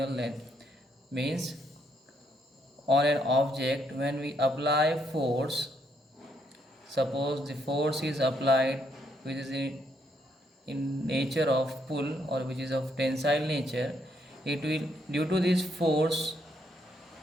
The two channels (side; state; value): both; normal; correlation 0.74